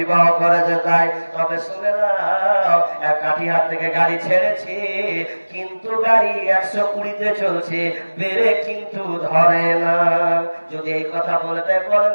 করেছে তাই। তবে শুনে নাও, এক কাঠিহাট থেকে গাড়ি ছেড়েছি, কিন্তু গাড়ি 120-তে চলছে, ব্রেক কিন্তু ধরে না। যদি এই কথা বলে তাই বলেন,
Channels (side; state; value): both; inverted; correlation -1.00